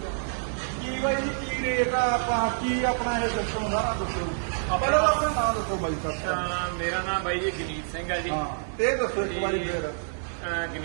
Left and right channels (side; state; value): left; silent; digital silence